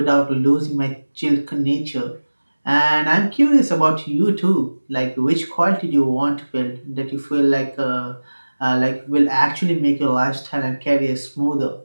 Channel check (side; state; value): both; inverted; correlation -1.00